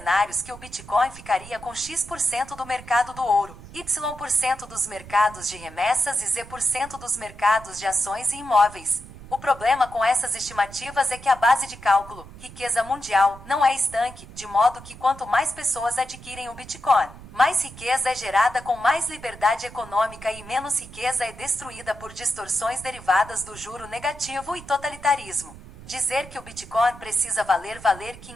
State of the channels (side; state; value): right; noise; rumble, 17 dB below the sound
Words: que o Bitcoin ficaria com X% do mercado do ouro, Y% dos mercados de remessas e Z% dos mercados de ações e imóveis. O problema com essas estimativas é que a base de cálculo, riqueza mundial, não é estanque, de modo que quanto mais pessoas adquirem o Bitcoin, mais riqueza é gerada com mais liberdade econômica e menos riqueza é destruída por distorções derivadas do juro negativo e totalitarismo. Dizer que o Bitcoin precisa valer